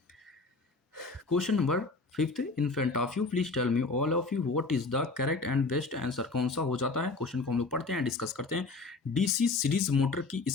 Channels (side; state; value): right; quieter; 3.7 dB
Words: question number 5 in front of you, please tell me all of you what is the correct and best answer. कौन सा हो जाता है? क्वेश्चन को हम लोग पढ़ते हैं, डिस्कस करते हैं। डीसी सीरीज मोटर की